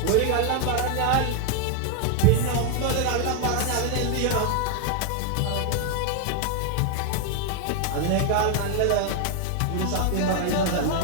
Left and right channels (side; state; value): both; different; correlation 0.01